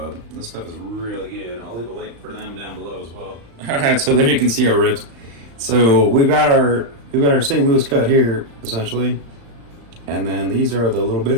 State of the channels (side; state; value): left; late; 35 ms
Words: This stuff is really good. I'll leave a link for them down below as well. All right, so there you can see our ribs. So we've got our St. Louis cut here, essentially. And then these are the little